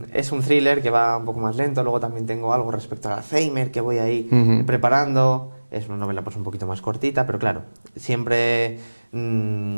un thriller que va un poco más lento, luego también tengo algo respecto al Alzheimer que voy ahí preparando, es una novela pues un poquito más cortita, pero claro, siempre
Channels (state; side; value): inverted; both; correlation -1.00